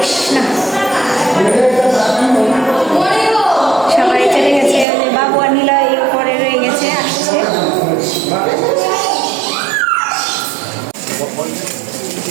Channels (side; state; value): left; drops out; at 4.9 s